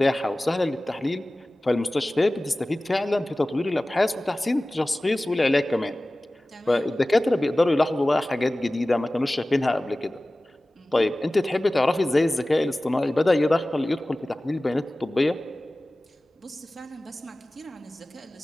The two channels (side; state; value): both; normal; correlation 0.97